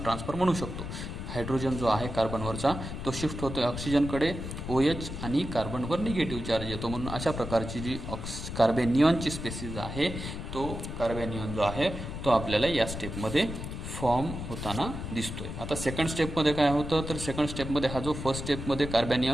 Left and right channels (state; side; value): noise; left; rumble, 7 dB below the sound